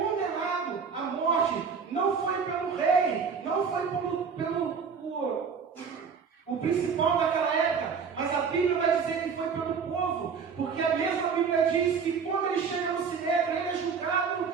à morte. Não foi pelo rei, não foi o principal daquela época, mas a Bíblia vai dizer que foi pelo povo, porque a mesma Bíblia diz que quando ele chega no Sinédrio, ele é julgado,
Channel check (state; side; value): quieter; left; 6.0 dB